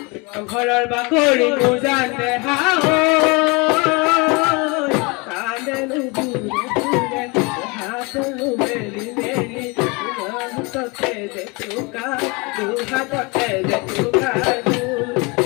ঘৰৰ বাকৰি বুজানে হাও কান্দে বুৰে বুৰে হাতলো মেলি মেলি হাততে যে চুকা দুহাততে যে চুকা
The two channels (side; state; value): right; quieter; 27.9 dB